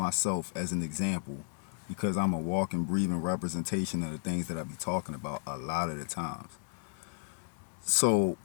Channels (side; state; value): right; silent; 56 dB below the other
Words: as an example because I'm a walking, breathing representation of the things that I be talking about a lot of the times. So,